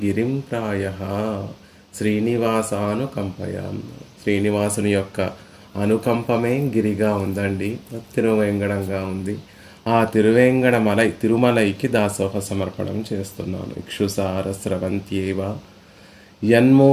గిరిం ప్రాయః శ్రీనివాసానుకంపయాం. శ్రీనివాసుని యొక్క అనుకంపమే గిరిగా ఉందండి, తిరువేంగడంగా ఉంది. ఆ తిరుమలైకి దాసోహ సమర్పణం చేస్తున్నాను. ఇక్షుసార స్రవంత్యేవ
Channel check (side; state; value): both; identical; correlation 1.00